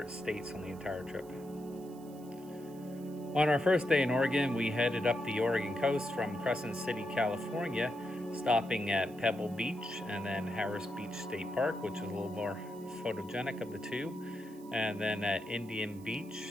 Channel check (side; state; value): right; noise; hiss, 24 dB below the sound